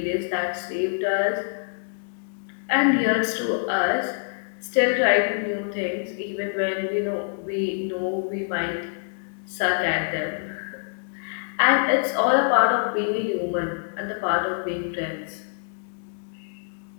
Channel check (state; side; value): silent; right; digital silence